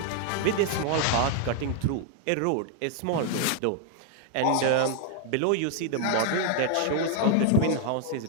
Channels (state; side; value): different; both; correlation 0.00